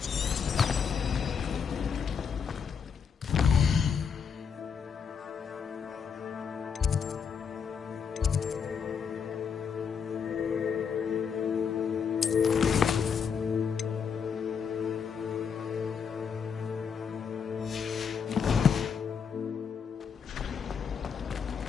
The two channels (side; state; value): right; quieter; 6.6 dB